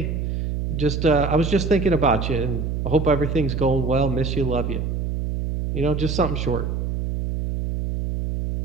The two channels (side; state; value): right; noise; hum, 2 dB below the sound